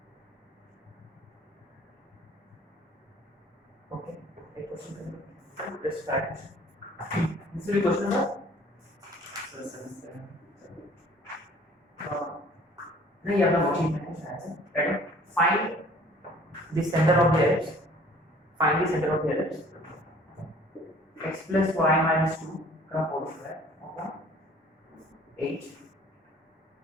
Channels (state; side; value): normal; both; correlation 0.53